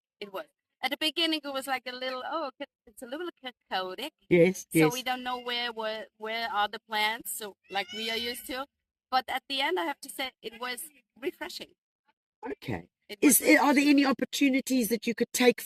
It was. At the beginning, it was like a little, it's a little chaotic. Yes, so we don't know where are the plants, so like we are used to. But at the end, I have to say, it was refreshing. Okay. Are there any opportunities that you could take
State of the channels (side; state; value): both; identical; correlation 1.00